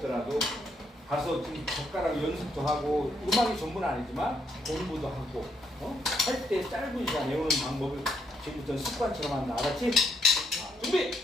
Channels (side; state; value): both; normal; correlation 0.74